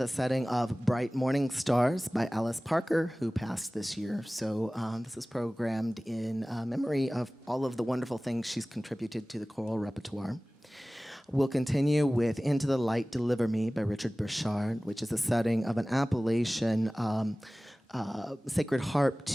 setting of Bright Morning Stars by Alice Parker, who passed this year. So this is programmed in memory of all of the wonderful things she's contributed to the choral repertoire. We'll continue with Into the Light, Deliver Me by Richard Burchard, which is a setting of an Appalachian sacred harp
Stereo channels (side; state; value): both; normal; correlation 0.98